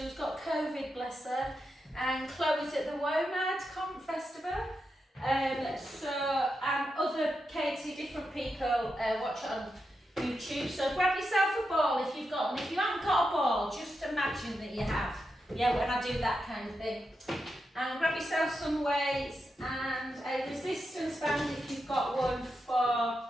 who's got COVID, bless her. And Chloe's at the WOMAD Festival. And other Katie, different people watch it on YouTube. So grab yourself a ball if you've got one. If you haven't got a ball, just imagine that you have. Yeah, when I do that kind of thing. And grab yourself some weights and a resistance band if you've got one for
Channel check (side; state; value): both; normal; correlation 0.87